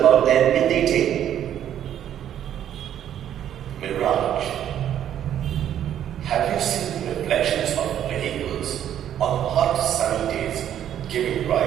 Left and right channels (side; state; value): left; quieter; 10.5 dB